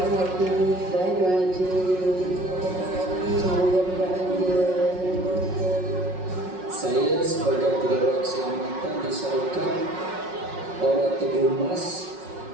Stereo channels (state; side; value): late; left; 5.5 ms